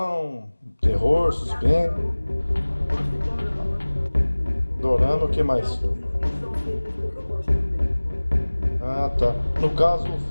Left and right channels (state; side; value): inverted; both; correlation -1.00